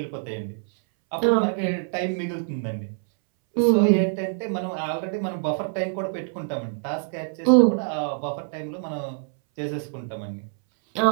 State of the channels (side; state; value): left; silent; 62 dB below the other